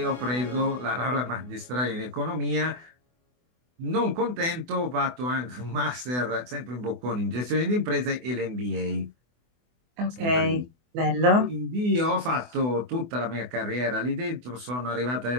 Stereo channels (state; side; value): late; left; 24 ms